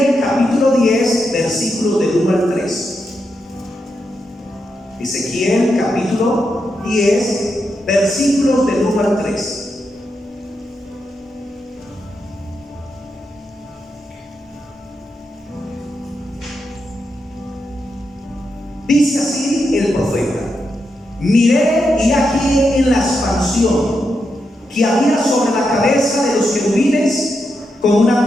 capítulo 10, versículos del 1 al 3. Ezequiel capítulo 10, versículos del 1 al 3. Dice así el profeta: miré y aquí en la expansión que había sobre la cabeza de los querubines con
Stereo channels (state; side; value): normal; both; correlation 0.85